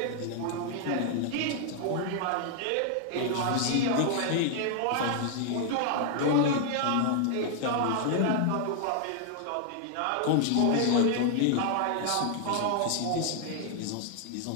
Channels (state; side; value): different; both; correlation 0.00